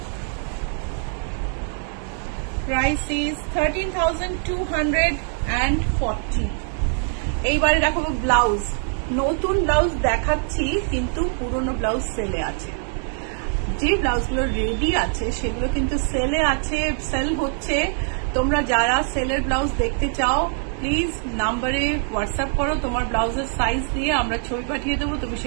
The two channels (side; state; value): left; silent; 56 dB below the other